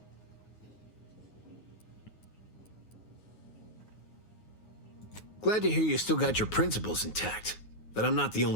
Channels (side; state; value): right; late; 9.5 ms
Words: Glad to hear you still got your principles intact. That I'm not the